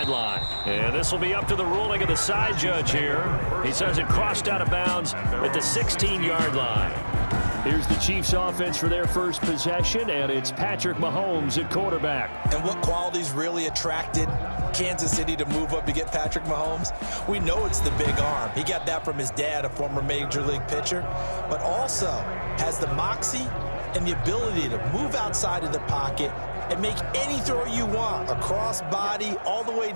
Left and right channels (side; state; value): both; inverted; correlation -1.00